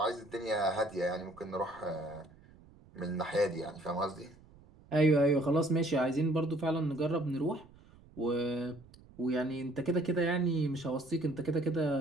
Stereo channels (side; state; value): right; noise; rumble, 24 dB below the sound